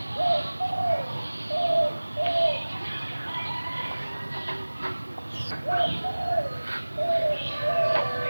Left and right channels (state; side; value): inverted; both; correlation -1.00